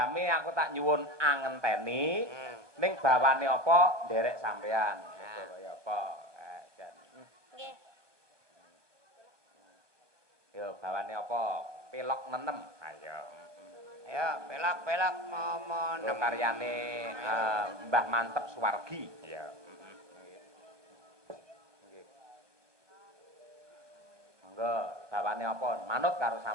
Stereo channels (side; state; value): left; late; 1.2 ms